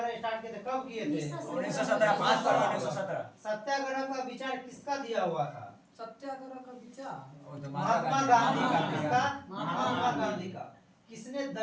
स्टार्ट किए थे कब किए थे? 1917 5 फरवरी 1917। सत्याग्रह का विचार किसका दिया हुआ था? सत्याग्रह का विचार महात्मा गांधी का। किसका? महात्मा गांधी का। किसने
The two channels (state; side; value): identical; both; correlation 1.00